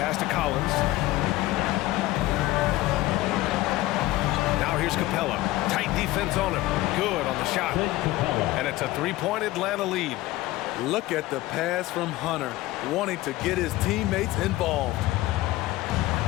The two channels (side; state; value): right; quieter; 17.5 dB